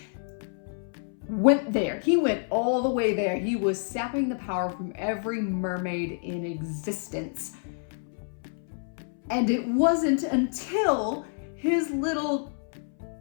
went there. He went all the way there. He was sapping the power from every mermaid in existence. And it wasn't until his little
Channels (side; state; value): right; silent; 59 dB below the other